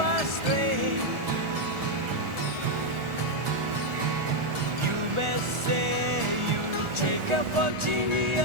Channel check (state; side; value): late; left; 1.4 ms